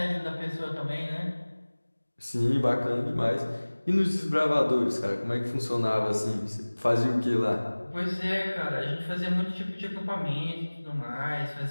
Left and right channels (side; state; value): both; inverted; correlation -1.00